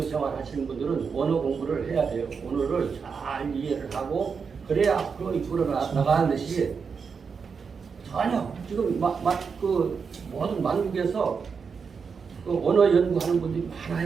생활 하시는 분들은 원어 공부를 해야 돼요. 원어를 잘 이해를 하고 그래야 앞으로 이끌어 나가는 것이 전혀 지금 그 모든 만국에서 그 언어 연구하는 분들이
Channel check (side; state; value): left; quieter; 5.7 dB